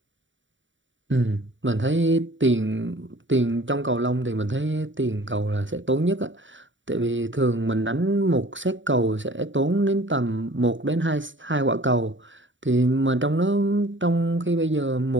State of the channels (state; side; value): late; left; 0.55 ms